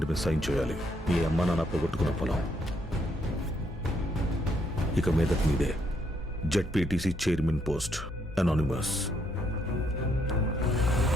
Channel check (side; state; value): both; normal; correlation 0.73